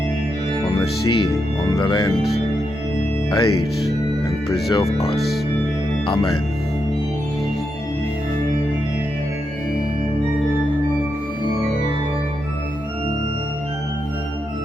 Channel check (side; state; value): both; normal; correlation 0.84